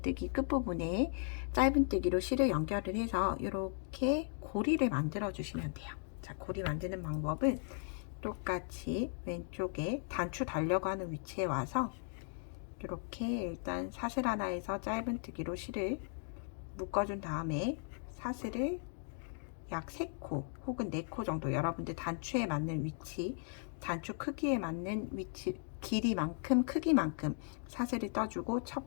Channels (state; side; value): silent; right; 53 dB below the other